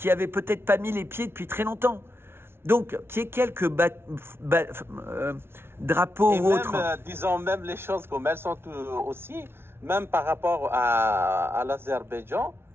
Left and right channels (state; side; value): late; left; 0.12 ms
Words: avaient peut-être pas mis les pieds depuis très longtemps. Donc, qu'il y ait quelques drapeaux et ou autres. Disons même les choses comme elles sont aussi, même par rapport à l'Azerbaïdjan,